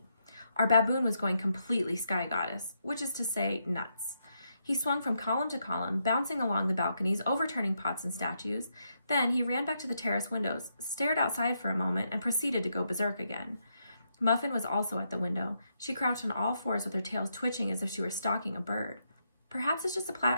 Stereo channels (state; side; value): inverted; both; correlation -0.79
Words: Our baboon was going completely sky goddess, which is to say, nuts. He swung from column to column, bouncing along the balconies, overturning pots and statues. Then he ran back to the terrace windows, stared outside for a moment, and proceeded to go berserk again. Muffin was also at the window. She crouched on all fours with her tail twitching as if she were stalking a bird. Perhaps it's just